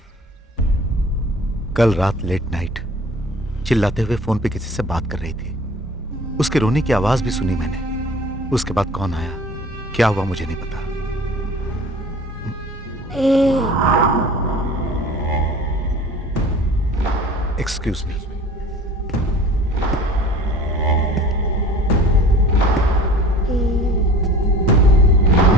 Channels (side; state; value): both; normal; correlation 0.44